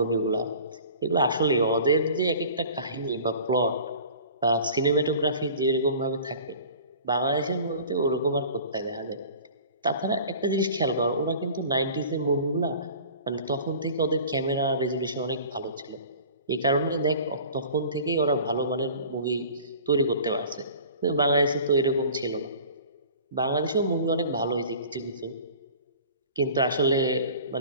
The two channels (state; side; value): inverted; both; correlation -0.43